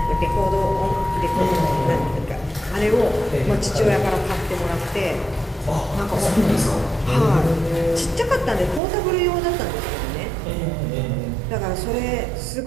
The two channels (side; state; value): left; drops out; at 8.8 s